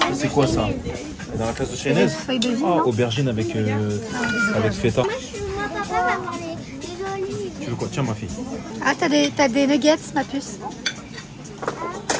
C'est quoi, ça? Et dans la classe de Chaynez? Ah, aubergine avec feta. Tu veux quoi? Tiens, ma fille. Ah, t'as des nuggets, ma puce.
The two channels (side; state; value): both; identical; correlation 1.00